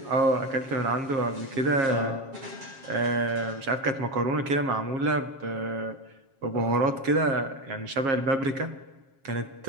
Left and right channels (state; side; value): late; left; 7.4 ms